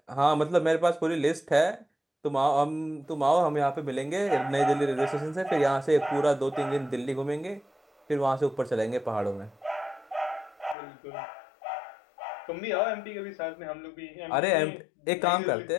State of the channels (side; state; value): right; drops out; at 10.8 s